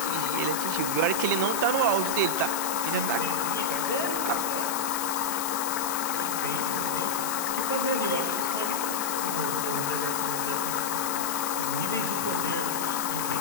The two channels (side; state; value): left; noise; hiss, 3 dB below the sound